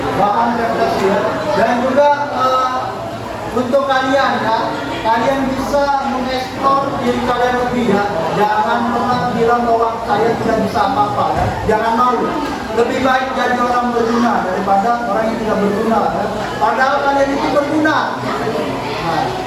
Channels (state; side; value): identical; both; correlation 1.00